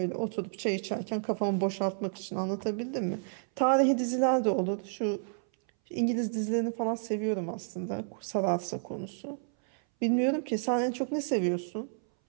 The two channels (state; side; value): silent; left; 57 dB below the other